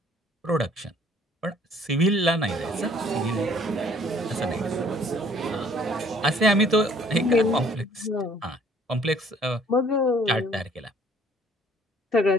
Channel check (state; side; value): normal; both; correlation 0.58